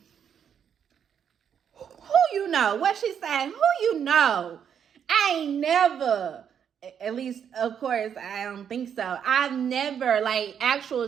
Who you know? What she saying? Who you know? I ain't never, at least, of course, I don't think so. I've never, like, actual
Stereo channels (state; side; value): quieter; left; 8.2 dB